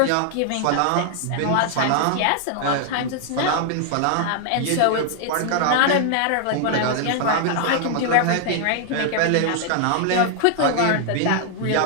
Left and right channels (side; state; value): both; different; correlation 0.00